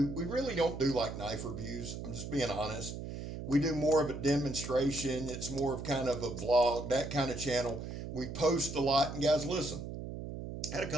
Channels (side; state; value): right; noise; hum, 7 dB below the sound